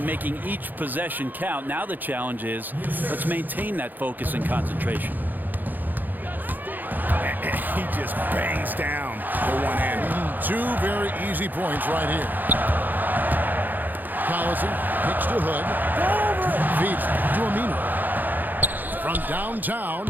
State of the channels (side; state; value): left; late; 0.086 ms